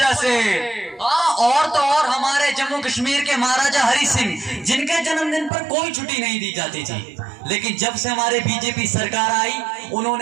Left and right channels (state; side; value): drops out; left; at 5.5 s